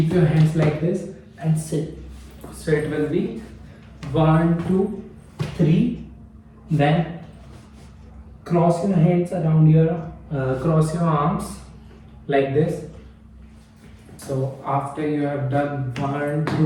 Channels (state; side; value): identical; both; correlation 1.00